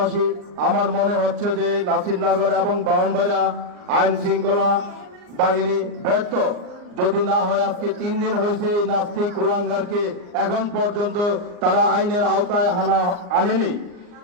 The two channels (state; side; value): late; left; 39 ms